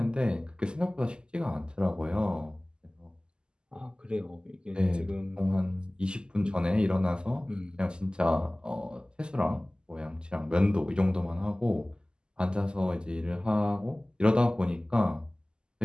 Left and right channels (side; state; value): left; late; 0.048 ms